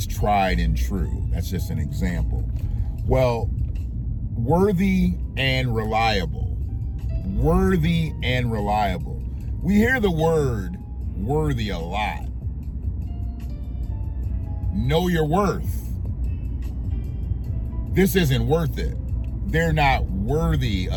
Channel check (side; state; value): both; identical; correlation 1.00